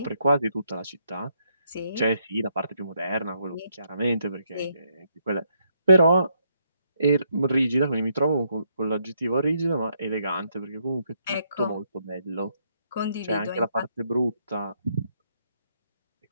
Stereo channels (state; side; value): inverted; both; correlation -0.75